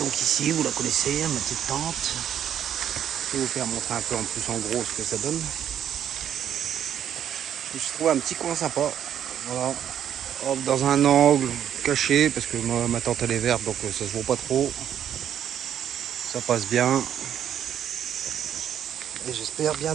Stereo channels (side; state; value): left; quieter; 9.8 dB